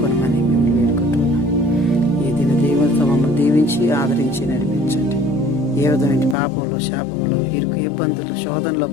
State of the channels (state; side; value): drops out; right; at 6.4 s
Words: మిమ్మల్ని వేడుకుంటున్నాం. ఈ దిన దీవులతో మమ్మల్ని దీవించి ఆదరించి నడిపించండి. ఏ విధమైన పాపంలో, శాపంలో, ఇరుకు, ఇబ్బందులు, శోధనలో